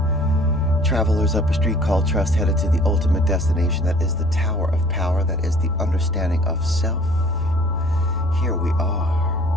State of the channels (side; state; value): left; noise; hum, 13 dB below the sound